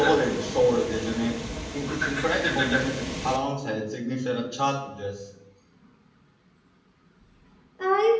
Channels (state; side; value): identical; both; correlation 1.00